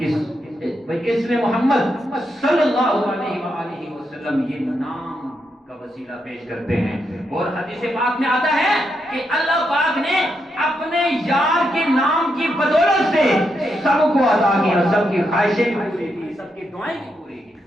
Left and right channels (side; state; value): both; normal; correlation 0.82